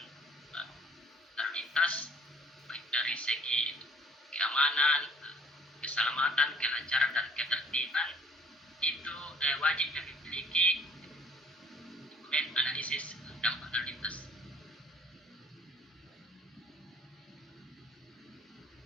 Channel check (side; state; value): both; normal; correlation 0.53